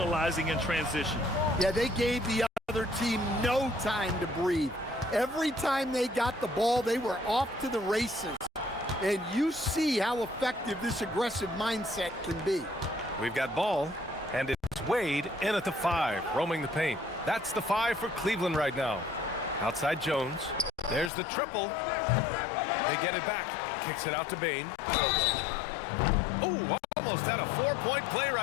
in transition. Yeah, they gave the other team no time to breathe. Every time they got the ball, they were off to the races. and you see how effective this aggressive mindset can be. We've got ball, and it's Wade in at the 5, roaming the paint. That's the 5 for Cleveland right now. Outside Jones. There's the triple. They get it back. Kicks it out to Bane. Oh, almost had a 4-point play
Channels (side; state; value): right; drops out; at 21.1 s